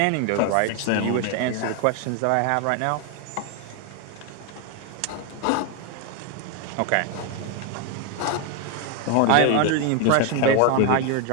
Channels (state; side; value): different; both; correlation 0.01